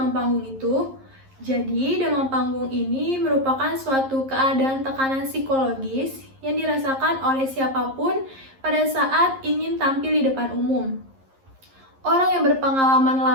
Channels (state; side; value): late; left; 11 ms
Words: panggung itu? Jadi, demam panggung ini merupakan suatu keadaan tekanan psikologis yang dirasakan oleh siapapun pada saat ingin tampil di depan umum. Orang yang berpengalaman